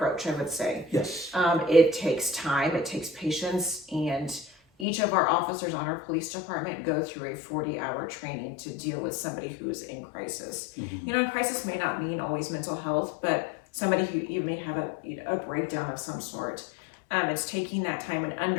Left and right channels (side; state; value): right; drops out; at 4.9 s